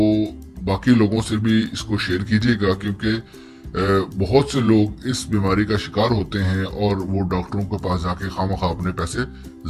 बाकी लोगों से भी इसको शेयर कीजिएगा, क्योंकि بہت سے لوگ اس بیماری کا شکار ہوتے ہیں اور وہ ڈاکٹروں کے پاس جا کے خواہ اپنے پیسے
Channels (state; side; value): identical; both; correlation 1.00